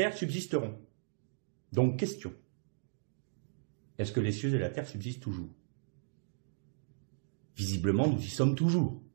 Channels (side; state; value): left; silent; digital silence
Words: subsisteront. Donc question. Est-ce que les cieux et la terre subsistent toujours? Visiblement, nous y sommes toujours.